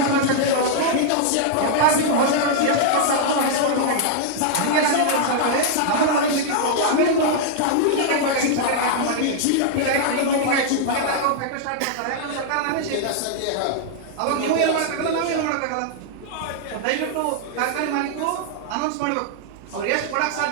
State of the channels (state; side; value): different; both; correlation -0.01